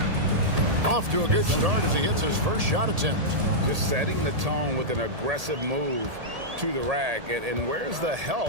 Off to a good start as he hits his first shot attempt. Just setting the tone with an aggressive move to the rack. And where's the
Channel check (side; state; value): left; late; 1.8 ms